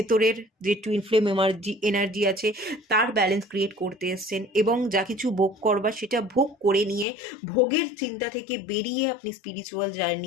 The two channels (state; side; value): drops out; right; at 7.1 s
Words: যে টুইন ফ্লেম এনার্জি আছে তার ব্যালেন্স ক্রিয়েট করতে এসছেন, এবং যা কিছু ভোগ করবার সেটা ভোগ করে নিয়ে ভোগের চিন্তা থেকে বেরিয়ে আপনি স্পিরিচুয়াল